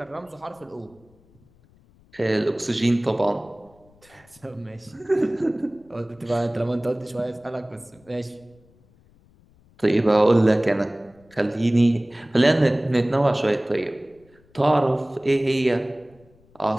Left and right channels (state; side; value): noise; left; rumble, 30 dB below the sound